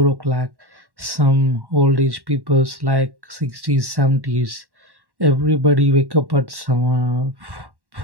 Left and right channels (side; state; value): left; late; 1.1 ms